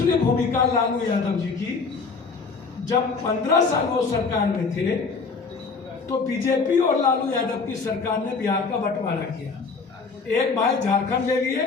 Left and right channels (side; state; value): right; quieter; 4.7 dB